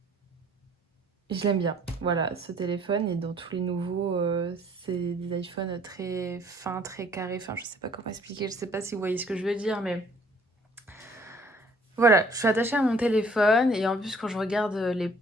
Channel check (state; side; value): normal; both; correlation 0.59